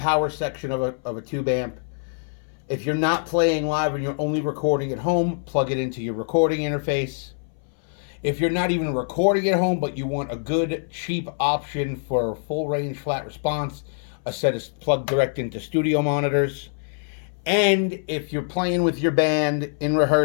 section of a tube amp. If you're not playing live and you're only recording at home, plug it into your recording interface. If you're not even recording at home, but you want a good, cheap option for full range flat response, a set is plugged direct into studio monitors. And if you're playing with your band in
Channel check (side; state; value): right; silent; 59 dB below the other